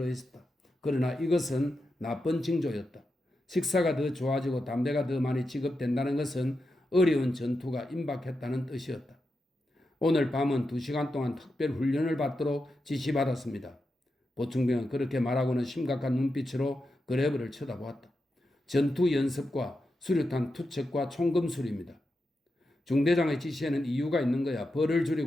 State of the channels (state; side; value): normal; both; correlation 0.88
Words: 그러나 이것은 나쁜 징조였다. 식사가 더 좋아지고 담배가 더 많이 지급된다는 것은 어려운 전투가 임박했다는 뜻이었다. 오늘 밤은 2시간 동안 특별 훈련을 받도록 지시받았습니다. 보충병은 그렇게 말하고는 심각한 눈빛으로 그레브를 쳐다보았다. 전투 연습과 수류탄 투척과 총검술입니다. 중대장의 지시에는 이유가 있는 거야. 벌을